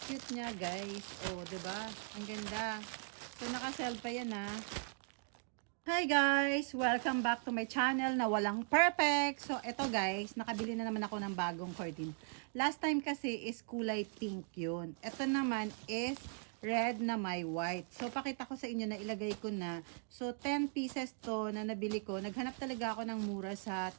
niya, guys. Oh, 'di ba? Ang ganda. So, naka-sell pa 'yan, ha. Hi guys! Welcome back to my channel na walang perfect. So, eto guys, nakabili na naman ako ng bagong curtain. Last time kasi is kulay pink yun. Ito naman is red na may white. So, pakita ko sa inyo na ilagay ko na. So, 10 pieces to na nabili ko. Naghanap talaga ako ng mura sa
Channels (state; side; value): silent; left; 52 dB below the other